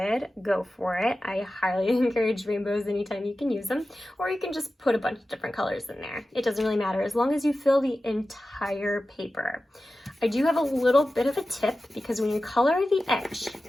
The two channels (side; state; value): both; normal; correlation 0.94